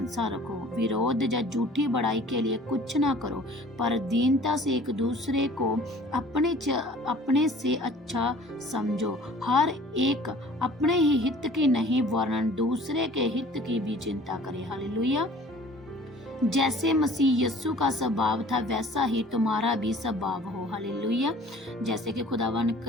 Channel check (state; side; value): normal; both; correlation 0.49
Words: रखो। विरोध या झूठी बड़ाई के लिए कुछ ना करो, पर दीनता से एक दूसरे को अपने से अच्छा समझो। हर एक अपने ही हित की नहीं वरन दूसरे के हित की भी चिंता करे। हालेलुया। जैसे मसीह यीशु का स्वभाव था वैसा ही तुम्हारा भी स्वभाव हो। हालेलुया। जैसे कि खुदावन